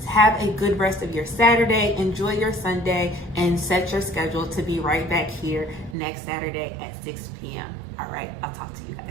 Have a good rest of your Saturday. Enjoy your Sunday, and set your schedule to be right back here next Saturday at 6 p.m. All right, I'll talk to you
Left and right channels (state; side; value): drops out; left; at 6.0 s